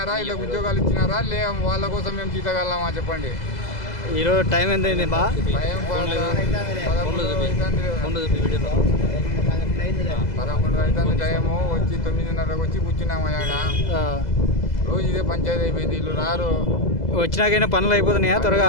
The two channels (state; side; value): late; right; 2.0 ms